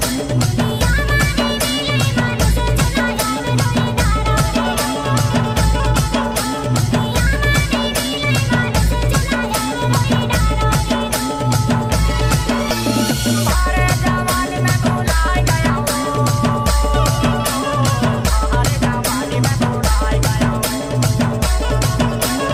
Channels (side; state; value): both; identical; correlation 1.00